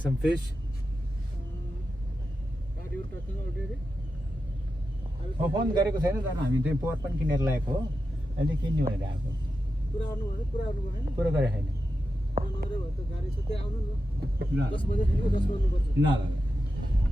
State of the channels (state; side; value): normal; both; correlation 0.90